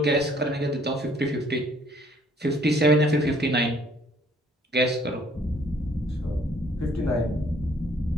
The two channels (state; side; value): normal; both; correlation 0.61